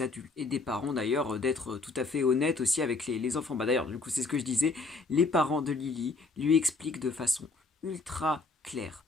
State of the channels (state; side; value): quieter; right; 3.7 dB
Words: adultes, et des parents d'ailleurs, d'être tout à fait honnêtes aussi avec les enfants. Bah d'ailleurs, du coup, c'est ce que je disais, les parents de Lily lui expliquent de façon ultra claire,